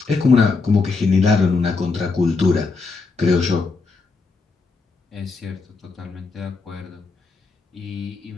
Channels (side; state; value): right; quieter; 4.2 dB